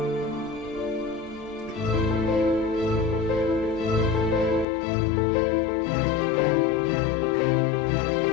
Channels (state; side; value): drops out; right; at 4.7 s